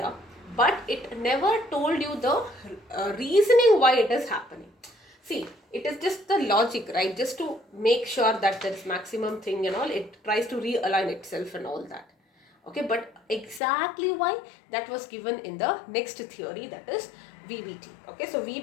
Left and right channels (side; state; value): right; drops out; at 13.6 s